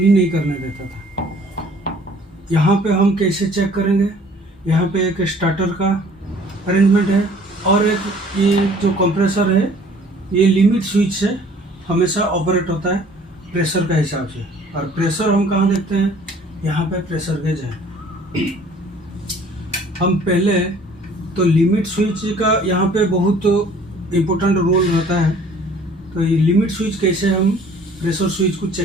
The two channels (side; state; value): both; normal; correlation 0.54